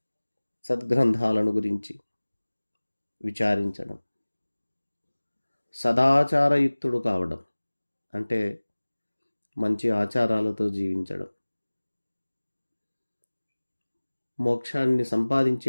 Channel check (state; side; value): inverted; both; correlation -1.00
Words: సద్గ్రంథాలను గురించి విచారించడం, సదాచారయుక్తుడు కావడం అంటే మంచి ఆచారాలతో జీవించడం, మోక్షాన్ని